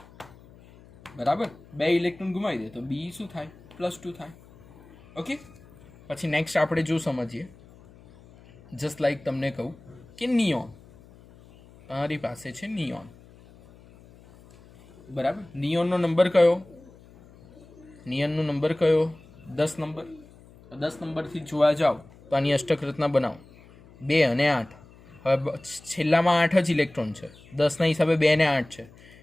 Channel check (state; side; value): noise; left; hum, 24 dB below the sound